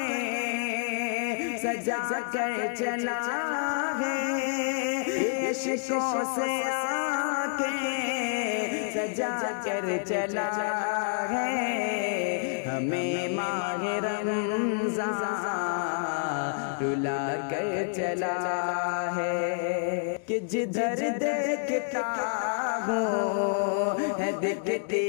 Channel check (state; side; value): silent; right; digital silence